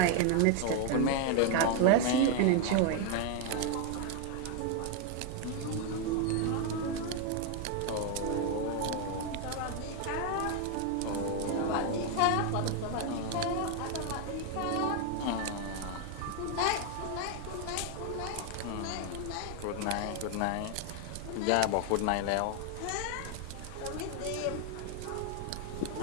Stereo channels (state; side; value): different; both; correlation 0.01